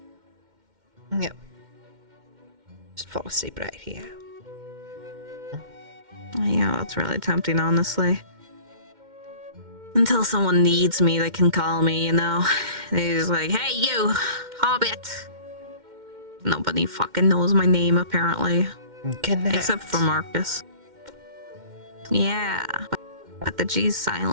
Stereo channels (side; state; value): left; late; 2.1 ms